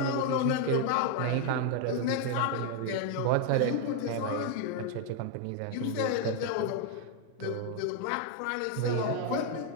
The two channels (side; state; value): both; different; correlation 0.00